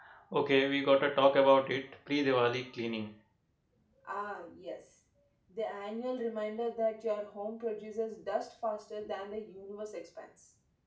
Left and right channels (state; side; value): identical; both; correlation 1.00